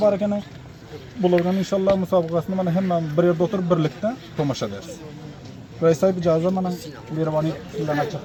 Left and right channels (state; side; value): identical; both; correlation 1.00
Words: var ekan bulardan inşallah musabakasını mana hemen bir yerde oturup birlikte tomaşa ederiz. Reis sahip icazı mana Mirvani sizden açık